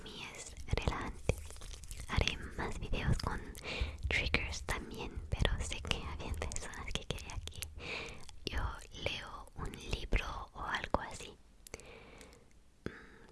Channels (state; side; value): identical; both; correlation 1.00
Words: mí es relajante. Haré más videos con triggers también, pero sé que habían personas que querían que yo leo un libro o algo así.